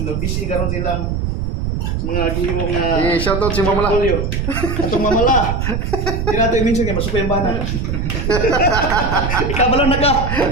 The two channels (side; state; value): right; noise; rumble, 1 dB below the sound